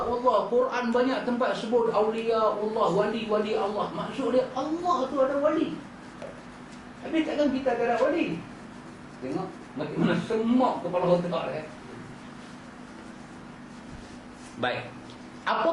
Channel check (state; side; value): identical; both; correlation 1.00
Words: Allah, Quran banyak tempat sebut awliya Allah, wali-wali Allah. Maksud dia Allah tu ada wali. Habis takkan kita tak ada wali? Tengok macam mana semak kepala otak dia. Baik.